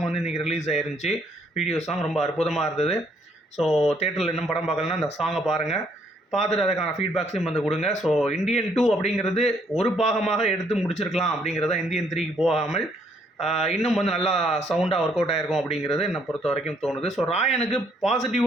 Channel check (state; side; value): normal; both; correlation 0.68